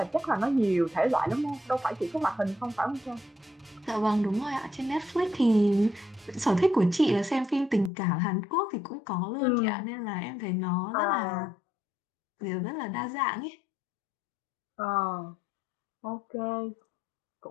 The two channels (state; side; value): drops out; right; at 7.9 s